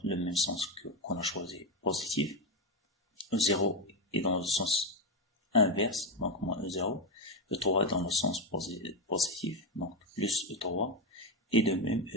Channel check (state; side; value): normal; both; correlation 0.11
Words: le même sens qu'on a choisi, positif. E0 est dans le sens inverse, donc moins E0. E3 est dans le sens positif, donc plus E3. Et de même,